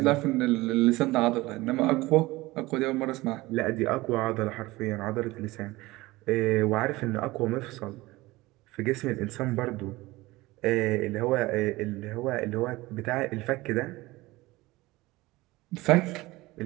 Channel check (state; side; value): quieter; left; 20.0 dB